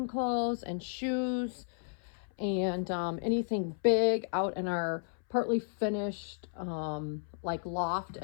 clothes and shoes and anything big out in our partly finished like loft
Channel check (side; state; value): right; silent; 56 dB below the other